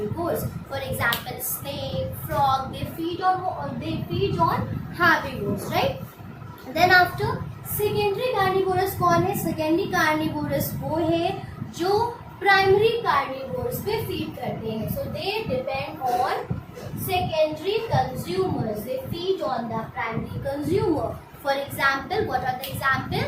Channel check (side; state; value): both; identical; correlation 1.00